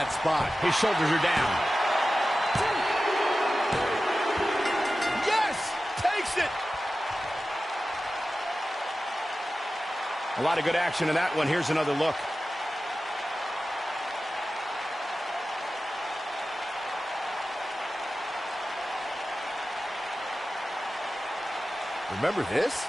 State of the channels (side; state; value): both; normal; correlation 0.94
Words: spot. His shoulders are down. Yes! Takes it! A lot of good action in that one. Here's another look. Remember this?